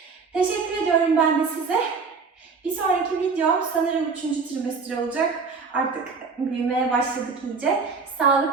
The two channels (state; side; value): quieter; left; 4.8 dB